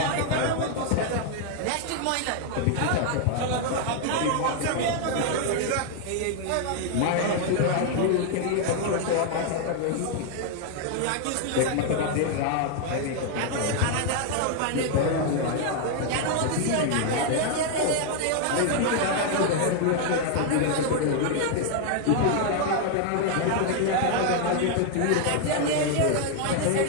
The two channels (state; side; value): different; both; correlation 0.00